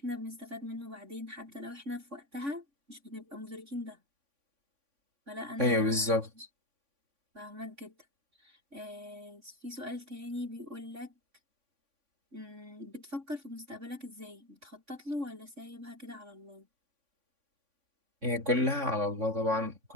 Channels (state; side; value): late; left; 3.5 ms